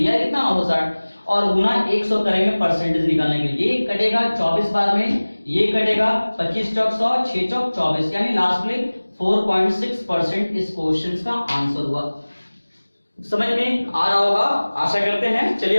कितना 960, और गुना 100 करेंगे परसेंटेज निकालने के लिए। ये कटेगा 24 बार में, ये कटेगा 25 चौक 100, 6 चौक 24, यानी लास्ट में 4.6% इस क्वेश्चन का आंसर हुआ। समझ में आ रहा होगा, आशा करते हैं। चलिए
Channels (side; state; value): both; inverted; correlation -1.00